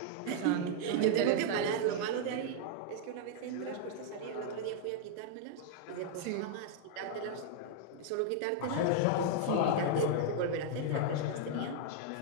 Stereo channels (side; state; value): both; different; correlation -0.01